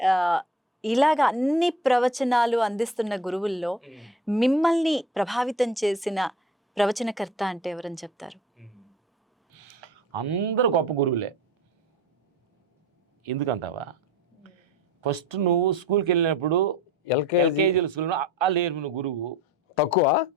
ఇలాగ అన్ని ప్రవచనాలు అందిస్తున్న గురువుల్లో మిమ్మల్ని ప్రభావితం చేసిన ప్రవచనకర్త అంటే ఎవరని చెప్తారు? అందరూ గొప్ప గురువులే. ఎందుకంటావా? ఫస్ట్ నువ్వు స్కూల్కి వెళ్ళినప్పుడు ఎల్కేజీ స్కూల్లో లేరు గురువు తక్కువ.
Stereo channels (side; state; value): both; normal; correlation 0.43